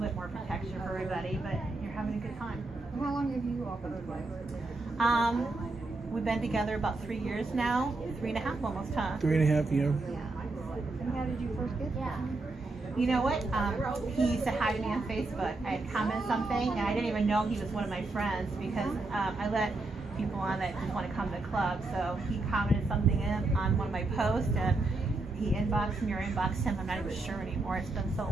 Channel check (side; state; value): left; quieter; 3.2 dB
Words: bit more protection for everybody, but you're having a good time. How long have you all been together? We've been together about 3 years now. 3.5 almost, huh? 3.5 years. And how did you first get there? You know what? He said hi to me on Facebook. I had commented something, and I didn't even know he was one of my friends because I let people on that just want to come to the club. So he commented something on one of my posts, and he inboxed me or inboxed him. I'm not even sure anymore. It's been so